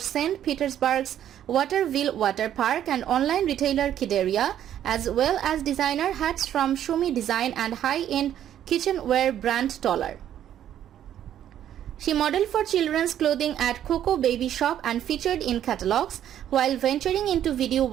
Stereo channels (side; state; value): left; quieter; 10.8 dB